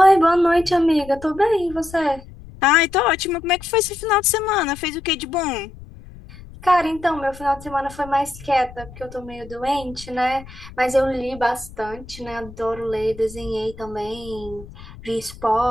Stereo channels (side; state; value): left; noise; rumble, 18 dB below the sound